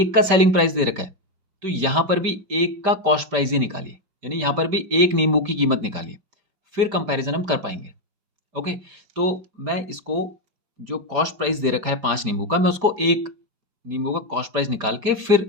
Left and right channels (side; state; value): left; late; 5.1 ms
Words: का सेलिंग प्राइस दे रखा है तो यहाँ पर भी एक का कॉस्ट प्राइस ही निकालिए, यानी यहाँ पर भी एक नींबू की कीमत निकालिए, फिर कंपैरिजन हम कर पाएंगे। ओके, तो मैं इसको जो कॉस्ट प्राइस दे रखा है 5 नींबू का, मैं उसको एक नींबू का कॉस्ट प्राइस निकाल के